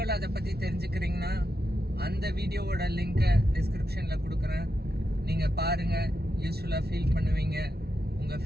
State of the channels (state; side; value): late; left; 0.46 ms